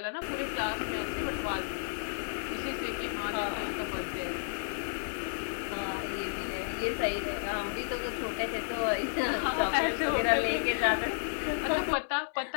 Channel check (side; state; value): right; silent; 56 dB below the other